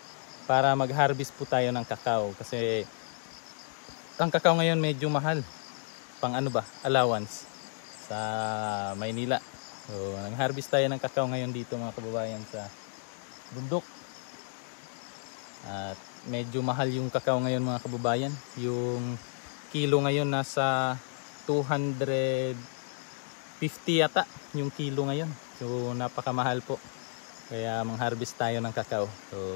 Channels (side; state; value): right; silent; digital silence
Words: para mag-harvest po tayo ng kakao kasi ang kakao ngayon medyo mahal pang allowance sa Maynila. So nag-harvest tayo ng kakao ngayon dito mga kababayan sa bundok. At medyo mahal yung kakao ngayon mga kababayan. Yung kilo ngayon nasa 250 yata yung kilo ngayon. So napakamahal po. Kaya mang-harvest tayo ng kakao.